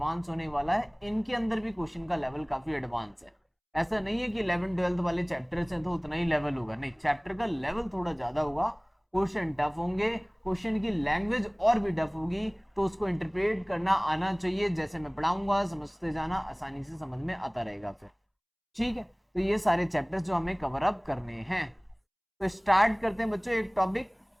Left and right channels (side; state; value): both; identical; correlation 1.00